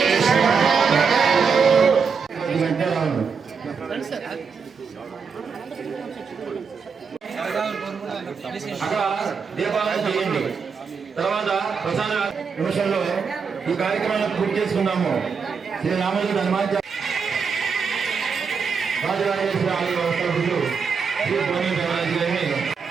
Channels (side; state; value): left; quieter; 5.7 dB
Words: అక్కడ దీపాలను చేయండి. తర్వాత ప్రసాద నిమిషంలో ఈ కార్యక్రమాన్ని పూర్తి చేసుకున్నాము. శ్రీ రామజీ హనుమాన్ రాజరాజేశ్వరి ఆలయ వ్యవస్థలు శ్రీ భోని దేవరాజు గారిని